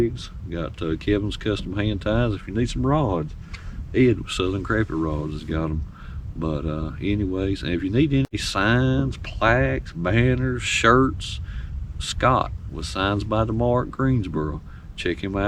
got Kevin's Custom Hand Ties. If you need some rods, Ed with Southern Crappie Rods has got them. But anyways, and if you need any signs, plaques, banners, shirts, Scott with Signs by DeMar at Greensboro. Check him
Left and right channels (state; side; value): identical; both; correlation 1.00